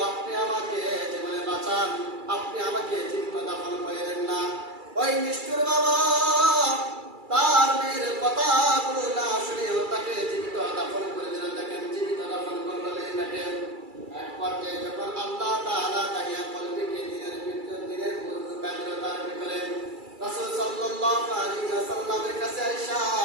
আপনি আমাকে জীবনে বাঁচান, আপনি আমাকে জীবিত দাফন করেন না। ওই নিষ্ঠুর বাবা তার মেয়ের কথাগুলো না শুনেও তাকে জীবিত দাফন করে দিল। দেখেন জীবিত দাফন করলো মেয়েটাকে। এক পর্যায়ে যখন আল্লাহ তাআলা তাহিয়া কলবিকে দিনের বুজুর্গ কাজল তার ভিতরে রাসূল সাল্লাল্লাহু আলাইহি ওয়াসাল্লামের কাছে আয়েশা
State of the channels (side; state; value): left; late; 2.3 ms